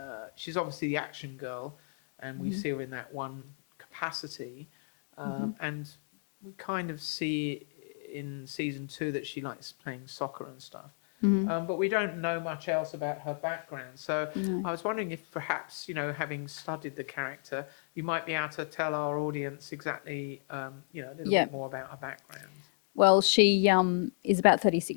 obviously the action girl, and we see her in that one capacity, and we kind of see in season 2 that she likes playing soccer and stuff. Mm-hmm. But we don't know much else about her background. So No. I was wondering if perhaps, having studied the character, you might be able to tell our audience exactly, a little Yeah. bit more about her background. Well, she is about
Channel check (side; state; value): right; silent; digital silence